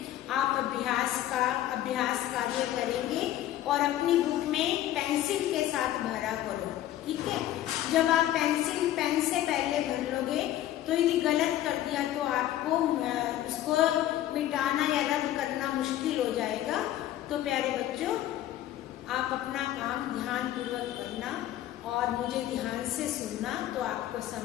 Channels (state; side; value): quieter; right; 13.2 dB